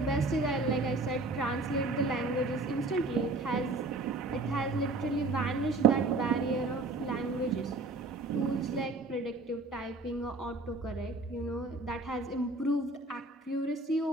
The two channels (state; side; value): quieter; left; 3.2 dB